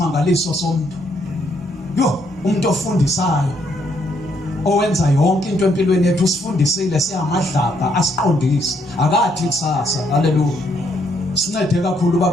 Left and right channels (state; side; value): normal; both; correlation 0.72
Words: somuntu yo umuntu ofundisayo owenza yonke into empilweni yethu usifundisile siyamadlabha asiqondise akathi kusasa haleluya sincede kakhulu